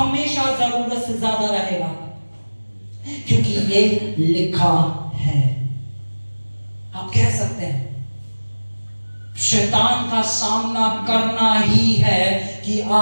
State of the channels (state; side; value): inverted; both; correlation -1.00